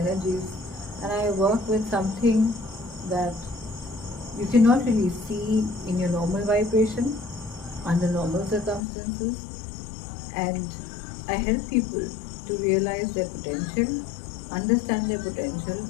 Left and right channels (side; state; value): right; drops out; at 8.8 s